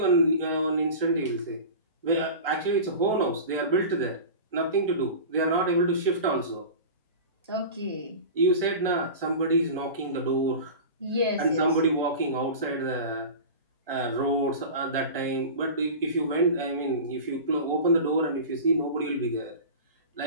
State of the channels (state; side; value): inverted; both; correlation -0.32